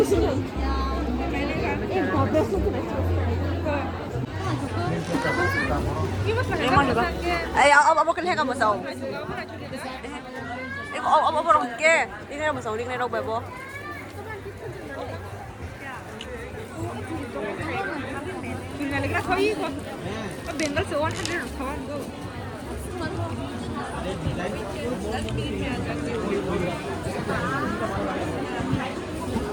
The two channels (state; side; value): identical; both; correlation 1.00